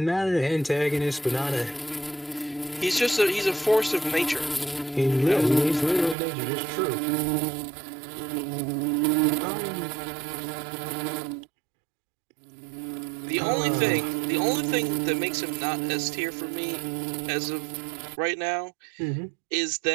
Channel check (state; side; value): drops out; left; at 6.2 s